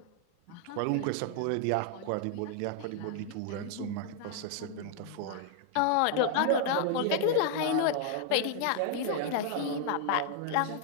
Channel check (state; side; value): different; both; correlation 0.00